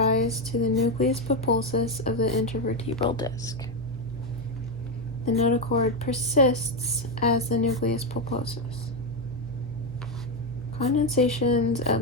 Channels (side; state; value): both; normal; correlation 0.07